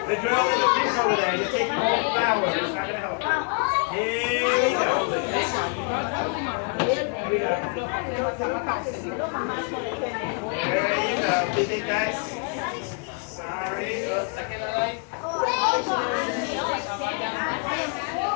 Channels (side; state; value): right; quieter; 38.1 dB